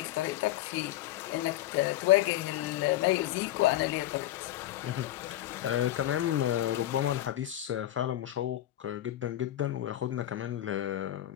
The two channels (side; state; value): right; quieter; 13.7 dB